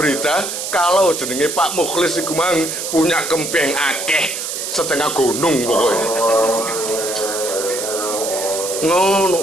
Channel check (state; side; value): noise; right; hiss, 5 dB below the sound